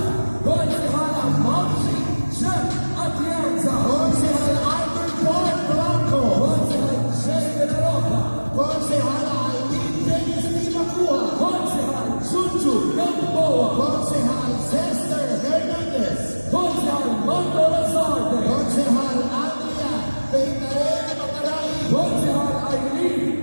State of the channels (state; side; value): inverted; both; correlation -1.00